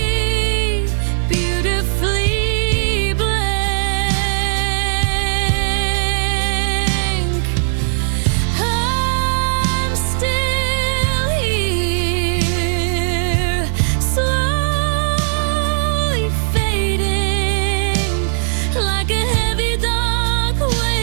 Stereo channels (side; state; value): left; silent; digital silence